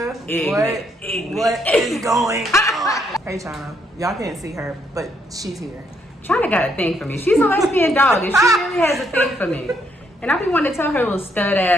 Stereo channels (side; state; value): both; normal; correlation 0.73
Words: what is going on? Hey, China. Y'all can't see her, but she's here. China got a thing for me. She's a lesbian dog, and she really has a thing for me. And I be wanting to tell her little stud